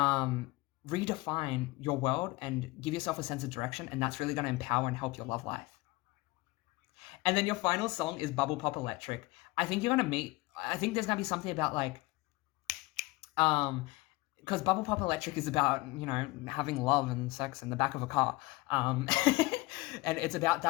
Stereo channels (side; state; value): right; quieter; 21.5 dB